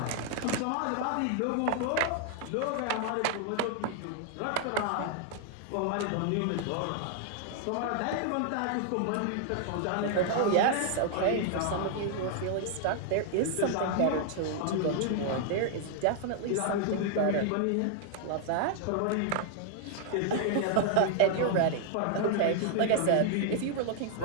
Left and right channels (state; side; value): different; both; correlation 0.00